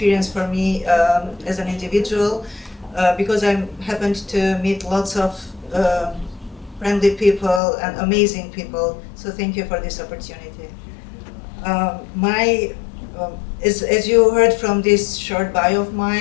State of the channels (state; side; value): drops out; right; at 7.6 s